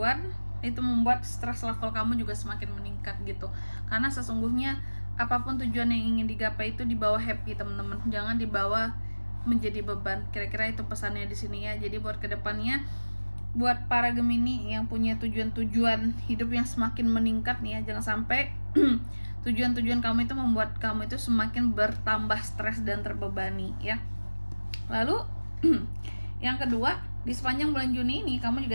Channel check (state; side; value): inverted; both; correlation -1.00